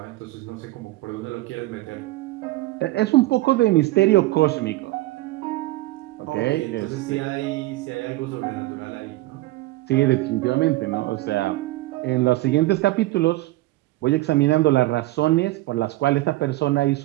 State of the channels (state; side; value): quieter; left; 18.4 dB